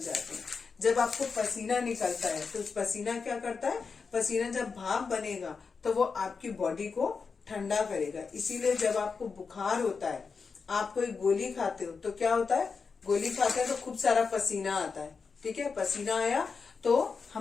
हैं। जब आपको पसीना निकलता है तो पसीना क्या करता है, पसीना जब भाप बनेगा तो वो आपकी बॉडी को ठंडा करेगा। इसीलिए जब आपको बुखार होता है, आप कोई गोली खाते हो तो क्या होता है, गोली खाते हैं तो खूब सारा पसीना आता है। ठीक है, पसीना आया तो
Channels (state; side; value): quieter; right; 5.1 dB